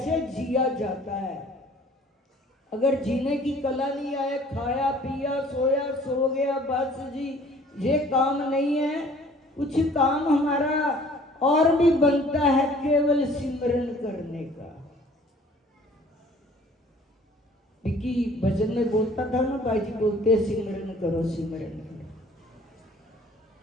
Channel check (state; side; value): normal; both; correlation 0.53